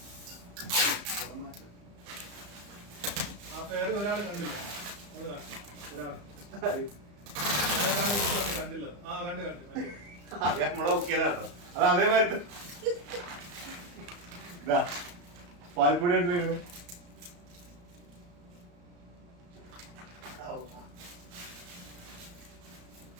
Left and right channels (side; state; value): left; late; 34 ms